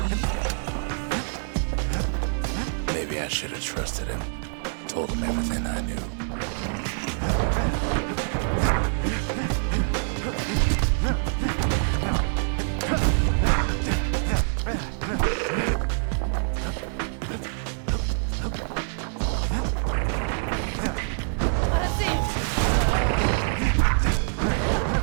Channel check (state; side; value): silent; left; digital silence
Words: Maybe I should have trusted him. Told him everything I knew.